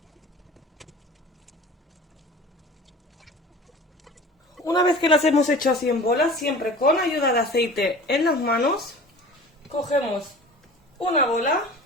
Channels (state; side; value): normal; both; correlation 0.40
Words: una vez que las hemos hecho así en bolas, siempre con ayuda de aceite en las manos, cogemos una bola,